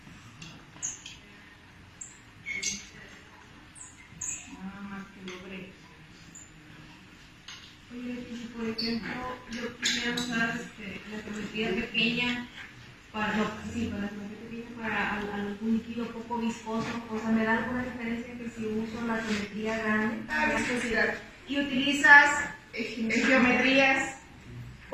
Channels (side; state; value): both; identical; correlation 1.00